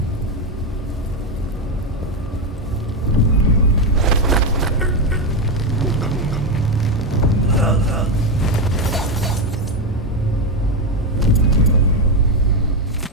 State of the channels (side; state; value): both; normal; correlation 0.09